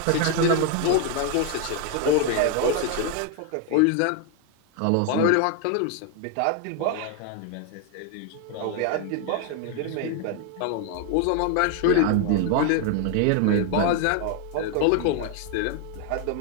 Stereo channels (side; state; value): both; different; correlation 0.01